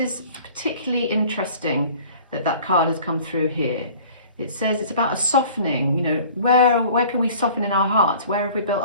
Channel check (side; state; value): both; inverted; correlation -0.48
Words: particularly interesting that card has come through here. It says it's about a softening, you know, where can we soften in our hearts? Where have we built